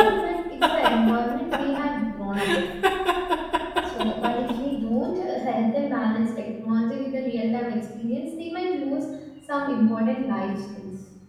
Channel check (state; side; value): identical; both; correlation 1.00